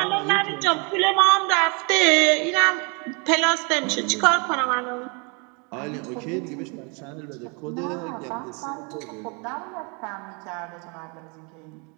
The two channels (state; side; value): quieter; left; 32.9 dB